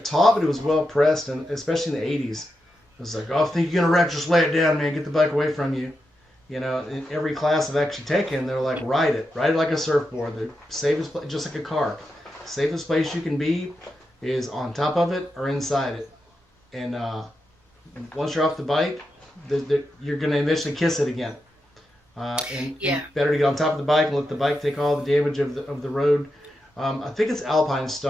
taught, but it was well pressed, and especially in the '80s. It was like, oh, if you think you're gonna wreck, just lay it down, man. Get the bike away from you. You know, in every class I've actually taken, they're like, ride it like a surfboard. The safest place, just like a car. Safest place you can be is on top of it or inside it. And once you're off the bike, you're gonna eventually kiss it again. And Yeah. better to get on top of the bike and let the bike take all the damage of the road. I think it's Alpine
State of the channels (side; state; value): both; normal; correlation 0.87